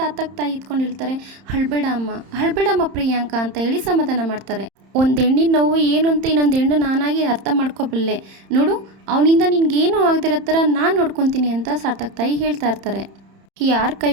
ತಾಯಿ ಇದ್ಕೊಂಡು ಹೇಳ್ತಾರೆ, ಅಳ್ಬೇಡಮ್ಮ ಪ್ರಿಯಾಂಕ ಅಂತ ಹೇಳಿ ಸಮಾಧಾನ ಮಾಡ್ತಾರೆ. ಒಂದು ಹೆಣ್ಣಿನ ನೋವು ಏನು ಅಂತ ಇನ್ನೊಂದು ಹೆಣ್ಣು ನಾನಾಗಿ ಅರ್ಥ ಮಾಡ್ಕೊಬಲ್ಲೆ ನೋಡು, ಅವನಿಂದ ನಿನ್ಗೇನು ಆಗದಿರೋ ಥರ ನಾನು ನೋಡ್ಕೊತೀನಿ ಅಂತ ಸಾರ್ಥಕ್ ತಾಯಿ ಹೇಳ್ತಾ ಇರ್ತಾರೆ. ಯಾರು ಕೈ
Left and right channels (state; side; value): late; left; 31 ms